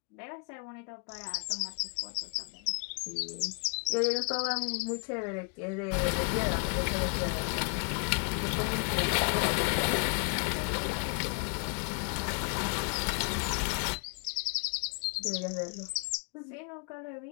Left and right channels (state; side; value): quieter; right; 38.8 dB